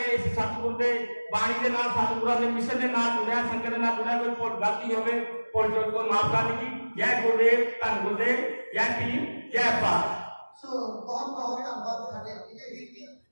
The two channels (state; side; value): inverted; both; correlation -1.00